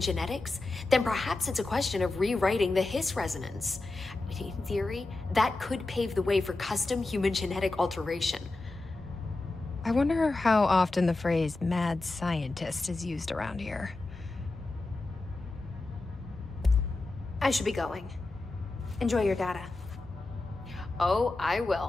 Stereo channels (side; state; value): right; quieter; 3.1 dB